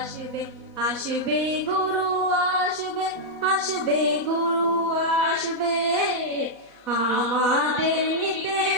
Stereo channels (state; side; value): late; right; 4.1 ms